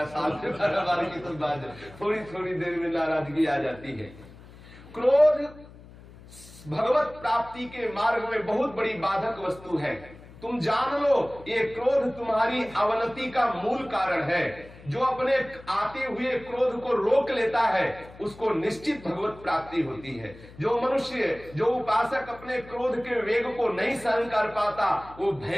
साल में 12 बार की तो बात थोड़ी थोड़ी देर में नाराजगी आ जाती है। क्रोध भगवत प्राप्ति के मार्ग में बहुत बड़ी बाधक वस्तु है। तुम जान लो, ये क्रोध तुम्हारी अवनति का मूल कारण है। जो अपने आते हुए क्रोध को रोक लेता है उसको निश्चित भगवत प्राप्ति होती है। जो मनुष्य, जो उपासक अपने क्रोध के वेग को नहीं सहन कर पाता, वो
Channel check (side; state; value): left; noise; hum, 20 dB below the sound